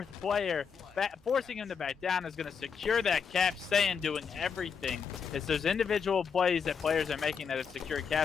player. Forcing him to back down is going to secure that cap. Saiyan doing everything. It's those individual plays that players are making that have secured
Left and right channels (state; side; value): quieter; right; 6.4 dB